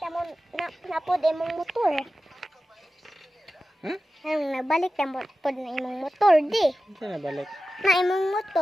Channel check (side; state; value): both; normal; correlation 0.94